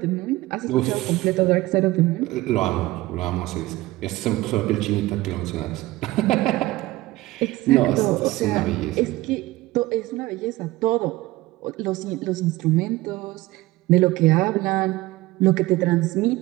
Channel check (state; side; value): quieter; left; 18.6 dB